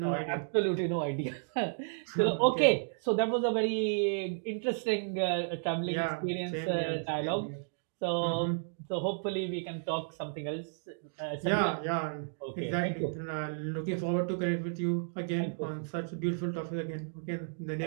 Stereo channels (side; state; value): left; silent; digital silence